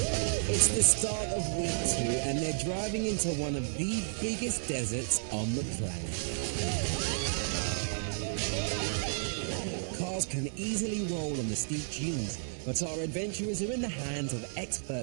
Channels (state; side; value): silent; left; 56 dB below the other